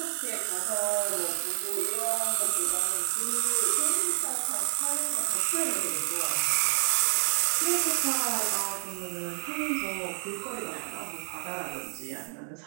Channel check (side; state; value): left; silent; 59 dB below the other